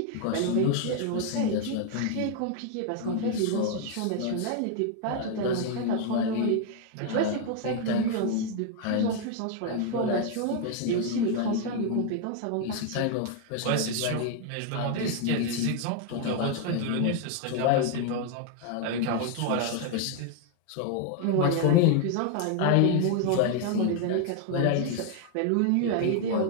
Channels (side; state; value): both; different; correlation 0.00